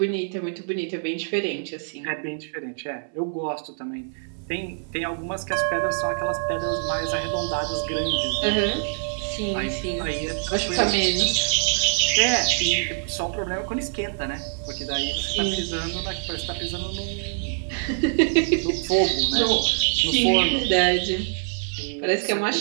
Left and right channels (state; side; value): silent; left; digital silence